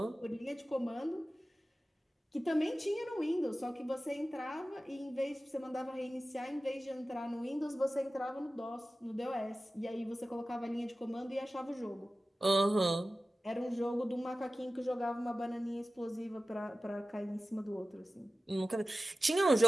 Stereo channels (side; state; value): both; normal; correlation 0.95